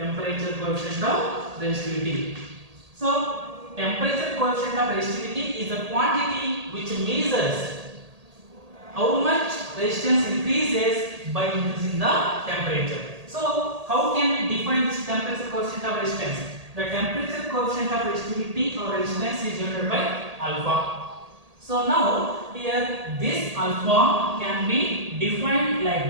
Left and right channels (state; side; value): late; left; 1.8 ms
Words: coefficient of resistivity. So temperature coefficient of resistivity is the quantity which measures how much resistance increases by increasing the temperature. So how can we define this temperature coefficient of resistance? The temperature coefficient of resistivity or resistance is denoted by alpha. So now here this alpha can be defined like